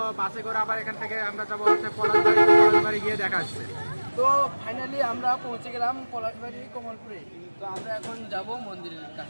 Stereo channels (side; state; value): both; inverted; correlation -1.00